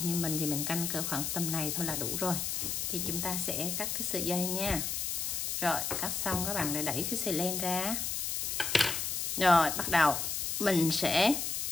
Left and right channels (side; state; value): left; noise; hiss, 1 dB below the sound